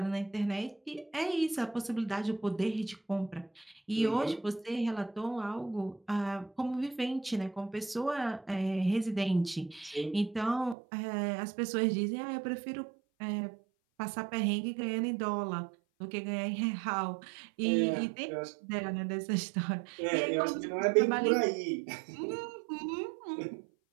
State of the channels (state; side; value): drops out; left; at 10.8 s